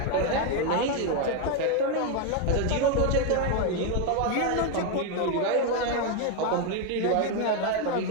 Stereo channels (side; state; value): both; different; correlation 0.02